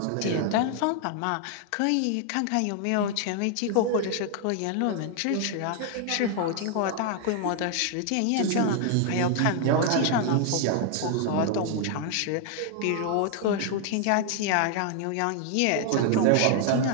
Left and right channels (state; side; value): different; both; correlation 0.00